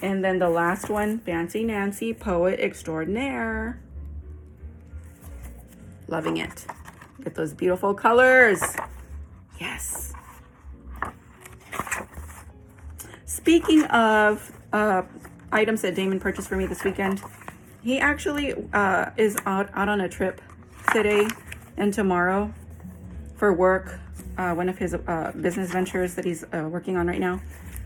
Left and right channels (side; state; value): both; identical; correlation 1.00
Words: And then the last one, Fancy Nancy Poet Extraordinaire. Loving it. Get those beautiful colors. Yes. Speaking of items that Damon purchased for me this weekend, he actually is out on a trip today and tomorrow for work, one of his business ventures that he's working on right now.